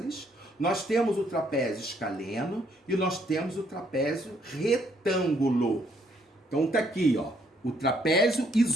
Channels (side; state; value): both; normal; correlation 0.69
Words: nós temos o trapézio escaleno e nós temos o trapézio retângulo. Então tá aqui, ó, o trapézio